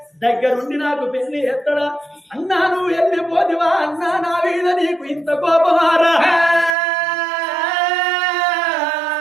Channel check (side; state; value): left; drops out; at 6.8 s